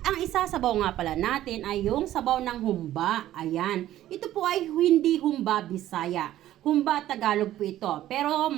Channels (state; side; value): quieter; left; 13.4 dB